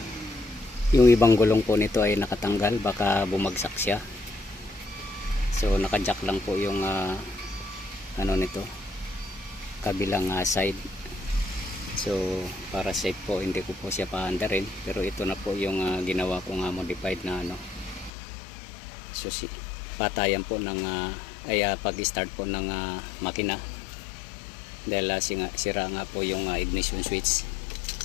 yung ibang gulong po nito ay nakatanggal, baka bumagsak siya. So naka-jack lang po yung ano nito, kabilang side. So para safe po hindi ko po siya paandarin, pero ito na po yung ginawa ko modified na susi, patayan po ng pag-start po ng makina. Dahil sira nga po yung ignition switch.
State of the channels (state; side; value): drops out; right; at 18.1 s